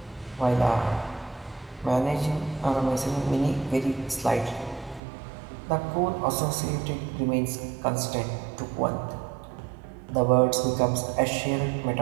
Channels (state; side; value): drops out; left; at 5.0 s